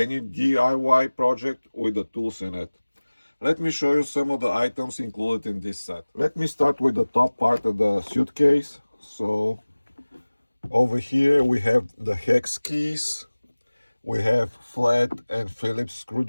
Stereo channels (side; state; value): both; inverted; correlation -1.00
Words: DIY project with the tools in it. Let me show you some of the items included in this set. Let me start with the top part of the suitcase. So over here we have the hex keys. We have flat and Phillips